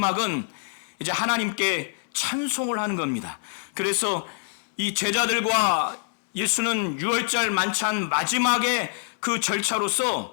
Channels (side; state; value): right; silent; 61 dB below the other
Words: 이제 하나님께 찬송을 하는 겁니다. 그래서 이 제자들과 예수는 유월절 만찬 마지막에 그